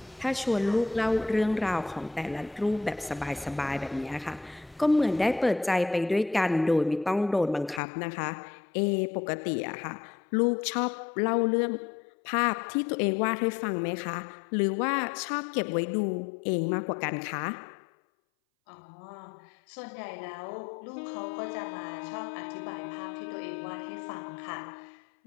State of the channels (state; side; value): drops out; right; at 7.8 s